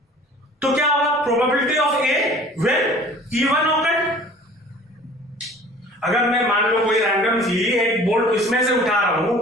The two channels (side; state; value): both; normal; correlation 0.48